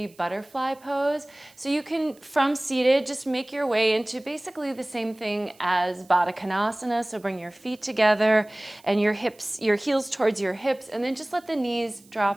butterfly pose. So you can, from seated, just make your way into basically the same thing as Baddha Konasana. So bring your feet together and your heels towards your hips, and then just let the knees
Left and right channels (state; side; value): noise; right; hiss, 28 dB below the sound